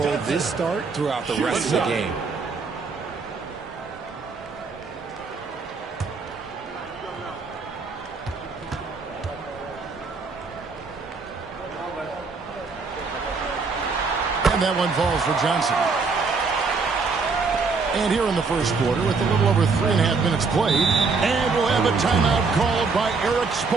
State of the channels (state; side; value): quieter; left; 4.5 dB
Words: this start throughout the rest of the game. And that one falls for Johnson. And here in the first quarter, with a little over 3.5 minutes played, and we'll have a timeout called by Erik